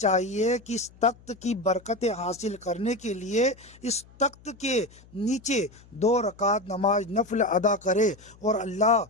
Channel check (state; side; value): noise; left; hum, 25 dB below the sound